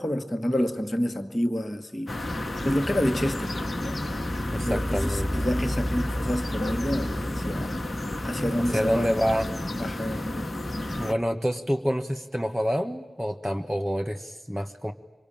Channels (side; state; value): both; normal; correlation 0.97